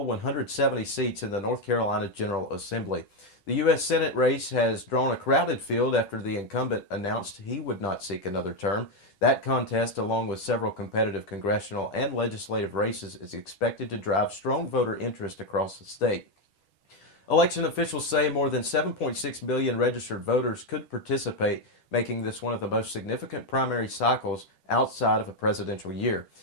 170 seats in the North Carolina General Assembly. The U.S. Senate race has drawn a crowded field after the incumbent announced he would not seek another term. That contest, along with several competitive congressional and legislative races, is expected to drive strong voter interest across the state. Election officials say more than 7.6 million registered voters could participate, making this one of the most significant primary cycles outside of a presidential year.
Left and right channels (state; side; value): late; right; 10 ms